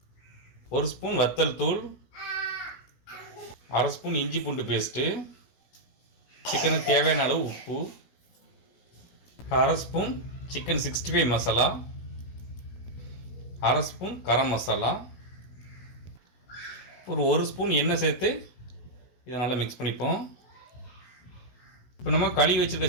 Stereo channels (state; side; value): late; right; 16 ms